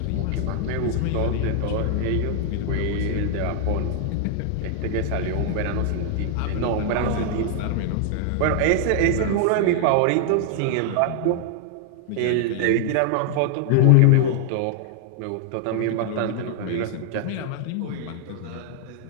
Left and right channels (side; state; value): both; different; correlation 0.00